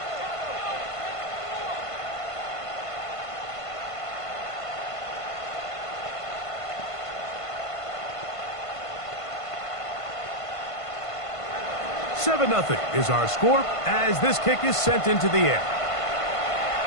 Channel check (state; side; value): late; right; 1.5 ms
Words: Seven 0 is our score as this kick is sent into the air.